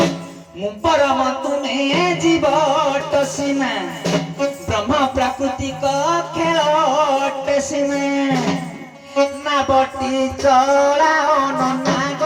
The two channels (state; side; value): identical; both; correlation 1.00